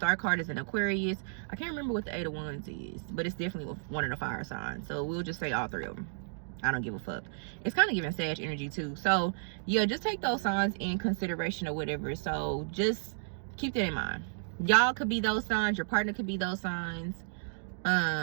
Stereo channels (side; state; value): left; silent; digital silence